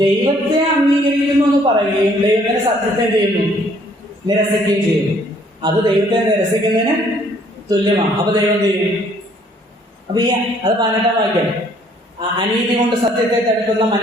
ദൈവത്തെ അംഗീകരിക്കുന്നു എന്ന് പറയുകയും ദൈവത്തിന്റെ സത്യത്തെ ചെയ്യുന്നു, നിരസിക്കുകയും ചെയ്യുന്നു. അത് ദൈവത്തെ നിരസിക്കുന്നതിന് തുല്യമാണ്. അപ്പൊ ദൈവം ചെയ്യും. അപ്പൊ അത് 18-ാം വാക്യം, അനീതി കൊണ്ട് സത്യത്തെ തടുക്കുന്ന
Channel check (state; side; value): normal; both; correlation 0.62